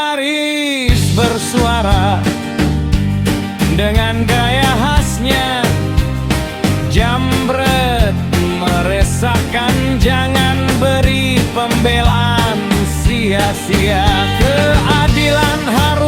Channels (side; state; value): both; identical; correlation 1.00